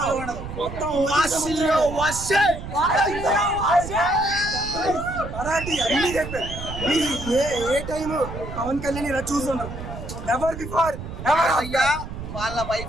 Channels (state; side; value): noise; right; rumble, 9 dB below the sound